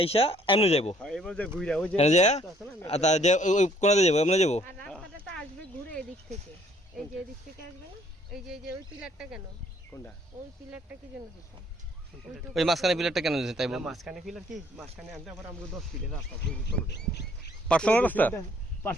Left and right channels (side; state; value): both; normal; correlation 0.62